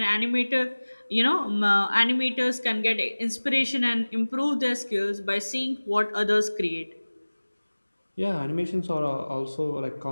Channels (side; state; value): both; inverted; correlation -1.00